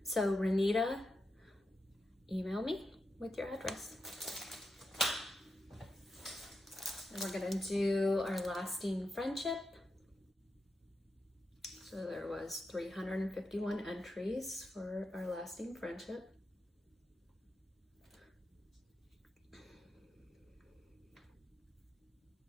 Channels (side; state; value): both; normal; correlation 0.88